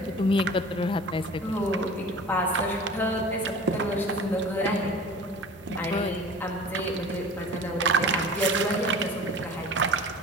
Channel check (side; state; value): both; normal; correlation 0.41